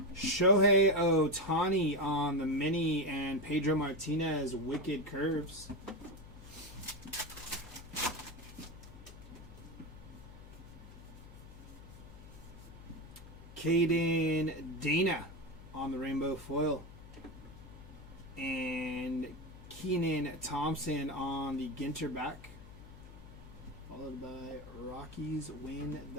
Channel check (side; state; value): left; noise; hum, 17 dB below the sound